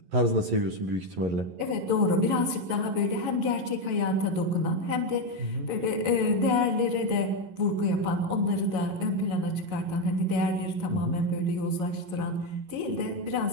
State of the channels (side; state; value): left; late; 11 ms